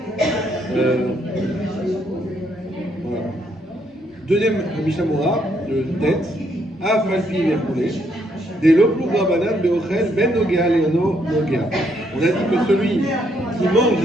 Voilà. Deuxième Mishnah Moura, de tête, Afalpi Vercoulé. Des loplu rabanan beochel ben nogea leono nogea. On a dit que celui qui mange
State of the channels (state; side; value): normal; both; correlation 0.72